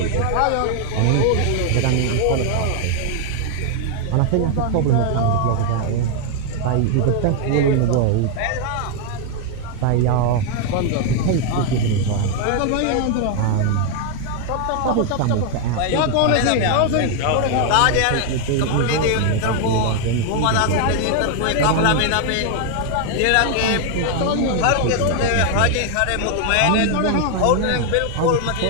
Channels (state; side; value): different; both; correlation 0.00